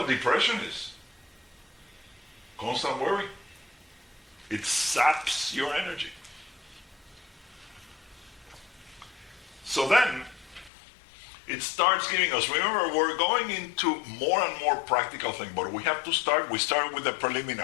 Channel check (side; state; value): right; drops out; at 10.7 s